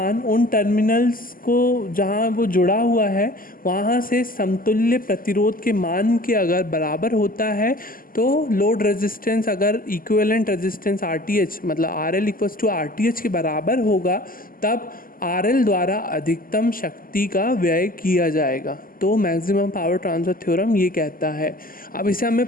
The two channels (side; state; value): right; late; 0.41 ms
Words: उन टर्मिनल्स को जहाँ वो जुड़ा हुआ है वहाँ से समतुल्य प्रतिरोध के मान के अगर बराबर होता है तो लोड रेजिस्टेंस अगर इक्विवेलेंट रेजिस्टेंस RTH मतलब RL इक्वल्स टू RTH के बराबर होगा तब RL द्वारा अधिकतम शक्ति का व्यय किया जाएगा। तो मैक्सिमम पावर ट्रांसफ़र थ्योरम ये कहता है। अब इसे हमें